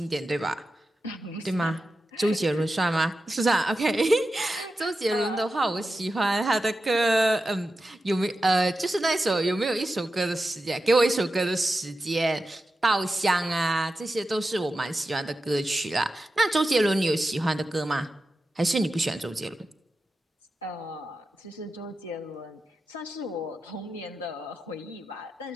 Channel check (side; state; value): both; normal; correlation 0.91